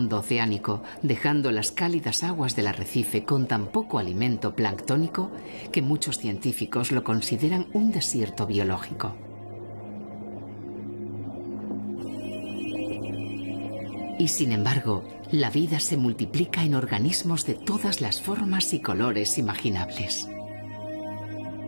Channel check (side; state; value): both; inverted; correlation -1.00